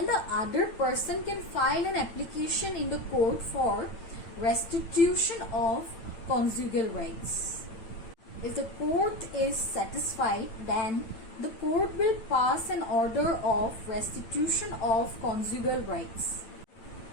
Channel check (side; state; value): right; late; 9.0 ms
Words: the other person can file an application in the court for restitution of conjugal rights. If the court is satisfied, then the court will pass an order of restitution of conjugal rights.